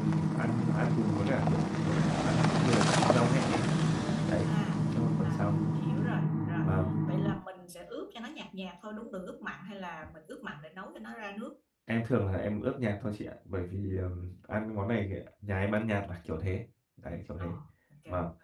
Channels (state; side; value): identical; both; correlation 1.00